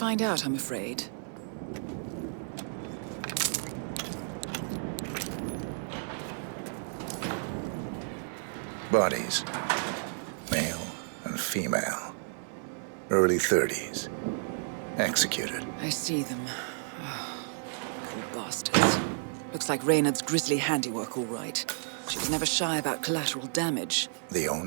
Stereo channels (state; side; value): silent; left; 57 dB below the other